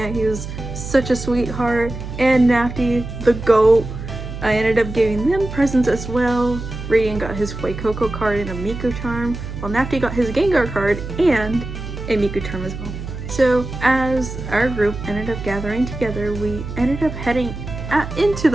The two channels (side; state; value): right; noise; hum, 8 dB below the sound